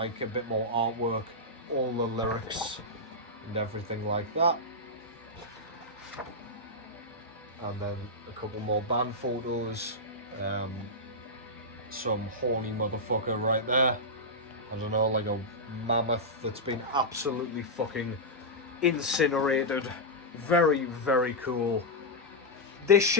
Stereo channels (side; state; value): both; normal; correlation -0.07